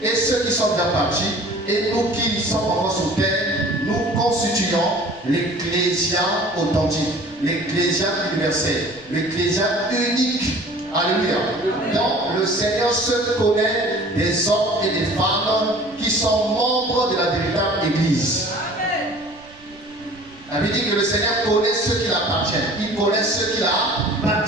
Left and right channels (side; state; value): right; noise; rumble, 26 dB below the sound